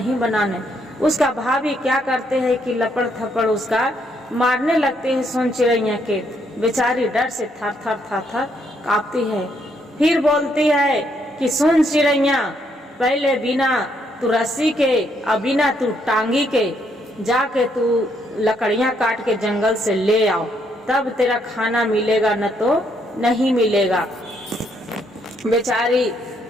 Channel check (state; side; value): normal; both; correlation 0.73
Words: बनाने। उसका भाभी क्या करते हैं कि लपड़ थपड़ उसका मारने लगते हैं सोन चिड़ैया के। बेचारी डर से थर थर थर थर कांपती है। फिर बोलती है कि सुन चिड़ैया, पहले बिना तू रस्सी के और बिना तू टांगी के जाके तू लकड़ियां काट के जंगल से ले आओ, तब तेरा खाना मिलेगा, न तो नहीं मिलेगा। बेचारी